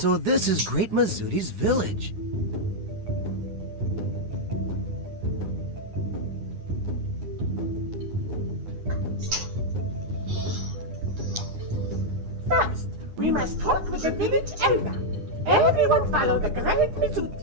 this is Great Mizuti's village. First, we must talk with the village elder. Everyone follow the Great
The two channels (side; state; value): left; late; 9.8 ms